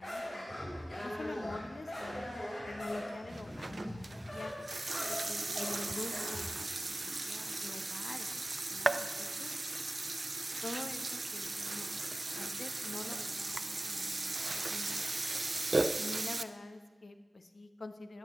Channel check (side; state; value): both; normal; correlation 0.97